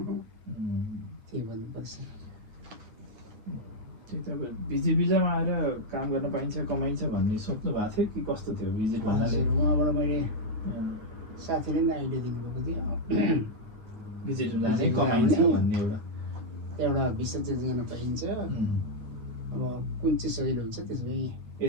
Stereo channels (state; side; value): late; left; 9.1 ms